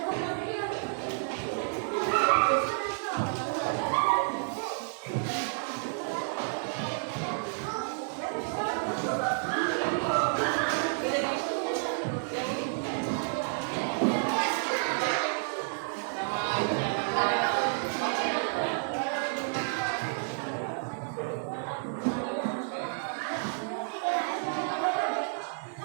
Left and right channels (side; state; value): left; silent; digital silence